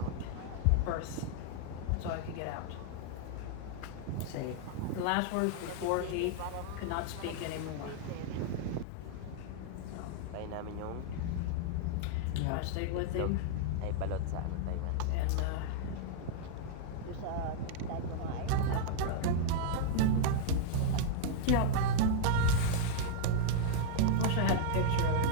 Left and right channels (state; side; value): different; both; correlation -0.01